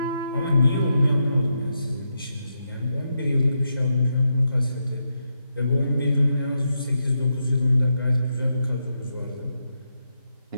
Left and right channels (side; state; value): both; inverted; correlation -0.83